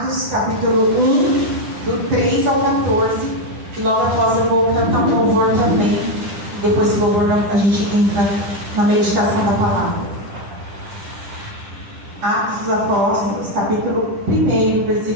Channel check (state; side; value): late; left; 10 ms